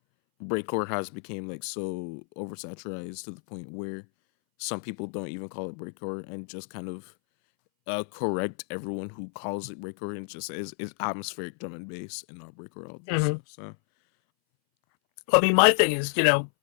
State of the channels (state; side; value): silent; right; 58 dB below the other